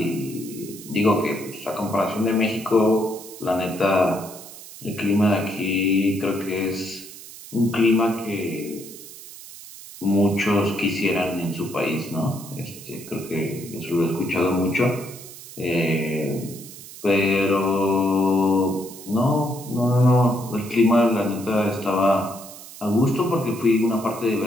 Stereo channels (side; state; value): right; noise; hiss, 16 dB below the sound